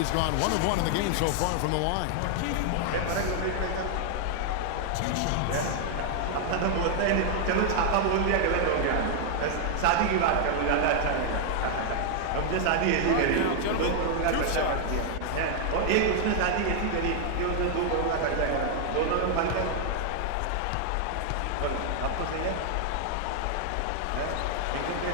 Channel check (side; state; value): both; different; correlation 0.00